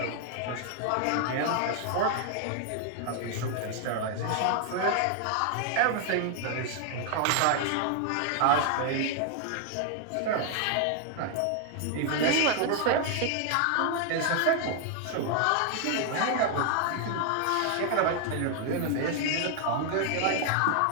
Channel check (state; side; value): different; both; correlation 0.00